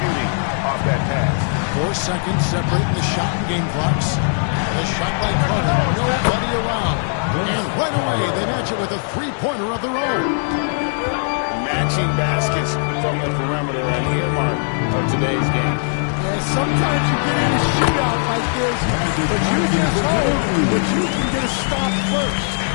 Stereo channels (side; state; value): right; silent; 64 dB below the other